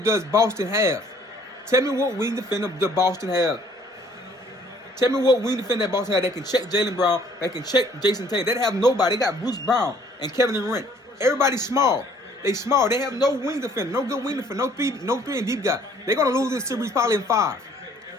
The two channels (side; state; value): both; normal; correlation 0.59